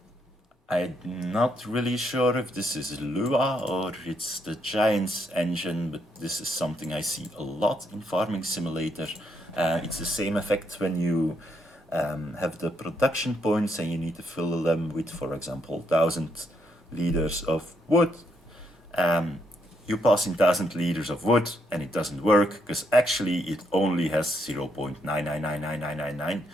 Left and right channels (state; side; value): normal; both; correlation 0.76